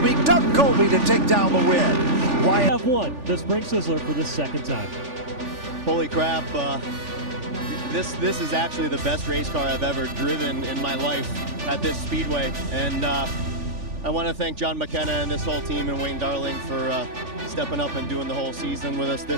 Doug Colby to take down the win. We have won the Spring Sizzler for the second time. Holy crap. This is actually the best race car I've ever driven in my life at this speedway, and I want to thank John McKenna and this whole team and Wayne Darling for stepping up and doing the whole season with us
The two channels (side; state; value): left; late; 3.4 ms